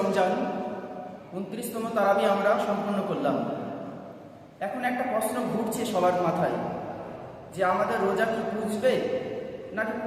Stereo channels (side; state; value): both; identical; correlation 1.00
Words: 29তম তারাবি আমরা সম্পন্ন করলাম। এখন একটা প্রশ্ন ঘুরছে সবার মাথায় যে আমাদের রোজা কি পুজবে নাকি